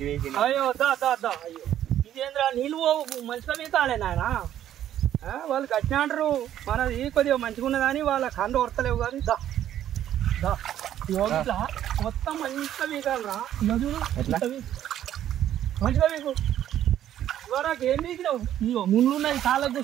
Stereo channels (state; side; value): quieter; left; 11.4 dB